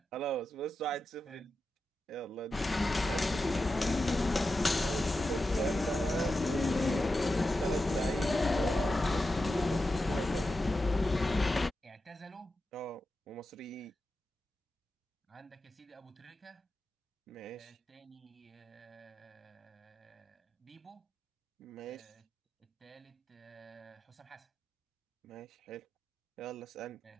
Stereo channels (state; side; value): normal; both; correlation 0.90